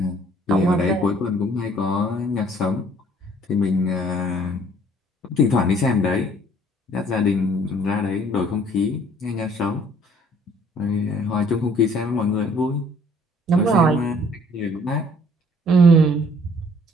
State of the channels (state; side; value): normal; both; correlation 0.58